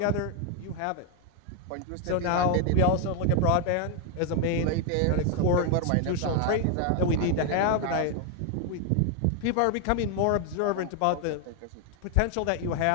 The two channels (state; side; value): different; both; correlation 0.01